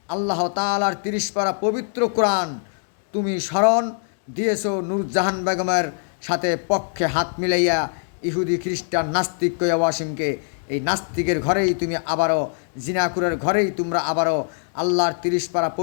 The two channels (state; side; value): silent; right; digital silence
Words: আল্লাহ তাআলার 30 পারা পবিত্র কোরআন তুমি স্মরণ দিয়েছো নূরজাহান বেগমের সাথে পক্ষে হাত মিলাইয়া ইহুদি খ্রিস্টান নাস্তিক কইয়া ওয়াসিমকে। এই নাস্তিকের ঘরেই তুমি আবারও, জিনাকুরের ঘরেই তোমরা আবারও আল্লাহর 30 পারা